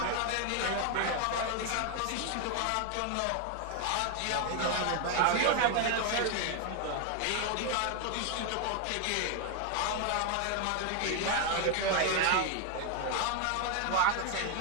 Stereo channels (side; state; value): both; different; correlation 0.01